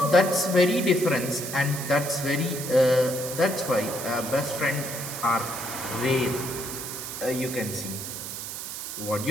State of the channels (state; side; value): noise; right; hiss, 7 dB below the sound